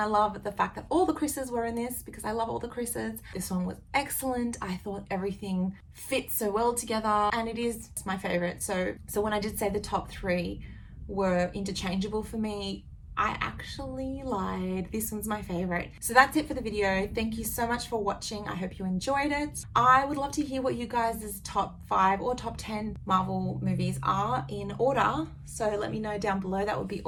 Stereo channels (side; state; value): both; identical; correlation 1.00